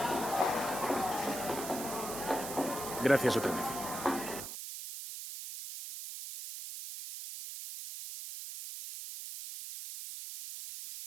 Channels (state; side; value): noise; right; hiss, 8 dB below the sound